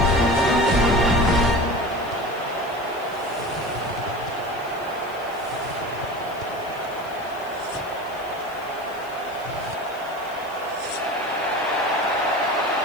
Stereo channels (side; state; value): left; noise; hiss, 23 dB below the sound